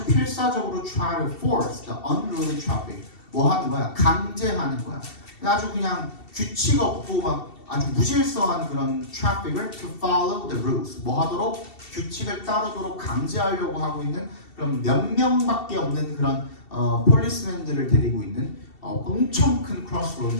필사적으로 try to force the unruly traffic 뭐 하는 거야? 강제하는 거야. 아주 그냥 규칙 없고 막 아주 무질서한 그런 트래픽을 to follow the rules 뭐 하도록 규칙을 따르도록 강제하려고 하고 있는 그런 몇 명밖에 없는 그런 폴리스맨들을 데리고 있는 엄청 큰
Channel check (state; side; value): late; right; 2.7 ms